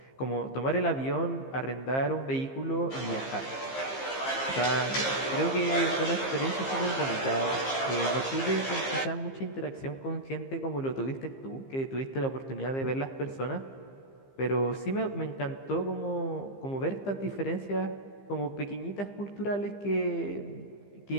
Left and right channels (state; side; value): late; right; 15 ms